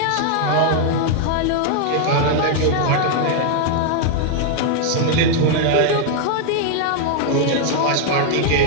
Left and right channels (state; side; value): different; both; correlation 0.00